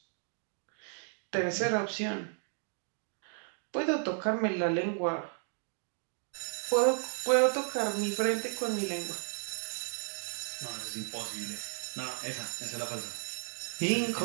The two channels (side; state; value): left; silent; 55 dB below the other